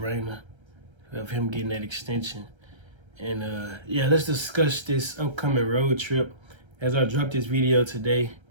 of him getting that extension. And, yeah, let's discuss this upcoming road trip. As I drop this video today,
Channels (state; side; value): late; left; 1.3 ms